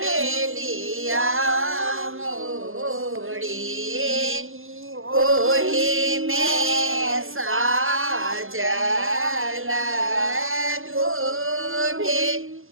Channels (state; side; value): late; left; 0.60 ms